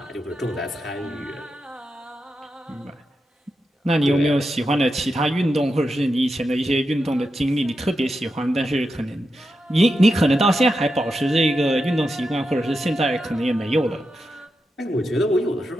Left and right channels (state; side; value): normal; both; correlation 0.88